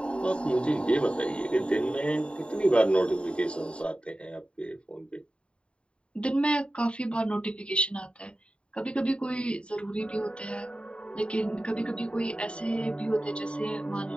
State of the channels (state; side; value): late; right; 0.056 ms